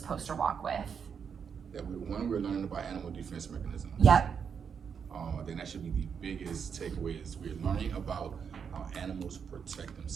poster walk with? That we're learning about animal defense mechanisms. Yep. I think that should be the biggest takeaway is we're learning about how animals protect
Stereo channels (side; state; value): left; quieter; 6.8 dB